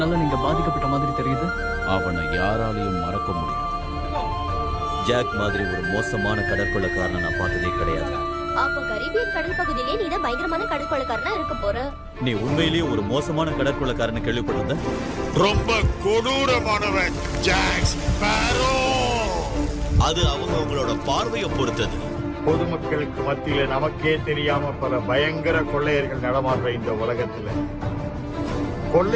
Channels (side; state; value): both; identical; correlation 1.00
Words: நீங்க பாதிக்கப்பட்ட மாதிரி தெரியுது. அவனை யாராலையும் மறக்க முடியும். ஜாக் மாதிரி ஒரு மோசமான கடற்கொள்ளக்காரனை நான் பார்த்ததே கிடையாது. அப்ப கரீபியன் கடல் பகுதியிலே நீ தான் பயங்கரமான கடற்கொள்ளக்காரனா இருக்க போற. நீ உண்மையிலேயே ஒரு மோசமான கடற்கொள்ளக்காரனை கேள்விப்பட்டிருந்த? ரொம்ப கொடூரமானவன் ஜாக் ஸ்பேரோ. அது அவங்களோட பார்வையை பொறுத்தது. பொதுமக்களுக்கு மத்தியில நமக்கே தெரியாம பல பயங்கர கொள்ளையர்கள் நடமாடுற இந்த உலகத்துல